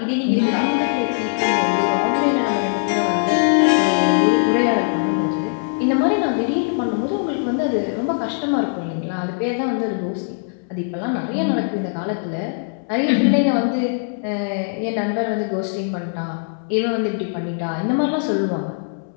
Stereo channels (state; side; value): silent; right; 64 dB below the other